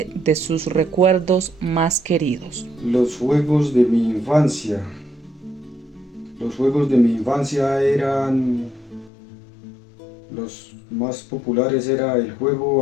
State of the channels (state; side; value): drops out; right; at 9.1 s